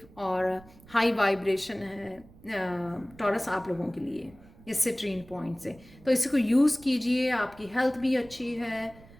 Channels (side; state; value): right; noise; rumble, 23 dB below the sound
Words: और हाई वाइब्रेशन है टॉरस आप लोगों के लिए इस सिट्रीन पॉइंट से। तो इसी को यूज़ कीजिए, आपकी हेल्थ भी अच्छी है